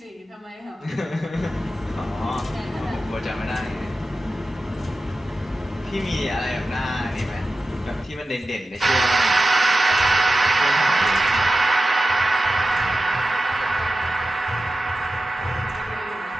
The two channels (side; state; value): both; normal; correlation 0.93